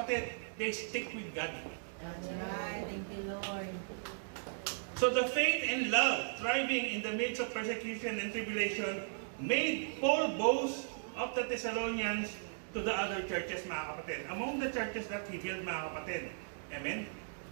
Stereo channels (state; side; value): silent; left; digital silence